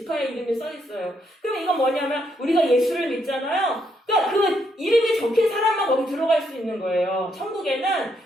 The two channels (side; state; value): both; normal; correlation 0.75